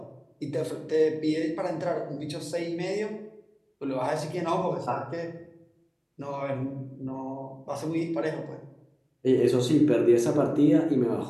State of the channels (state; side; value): identical; both; correlation 1.00